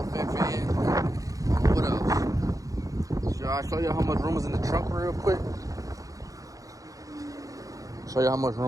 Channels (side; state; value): left; late; 0.17 ms